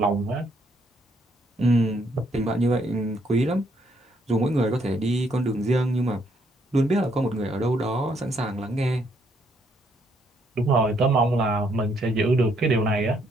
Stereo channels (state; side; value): normal; both; correlation 0.71